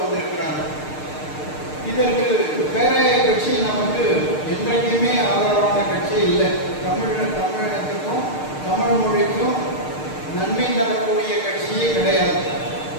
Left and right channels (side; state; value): right; late; 6.6 ms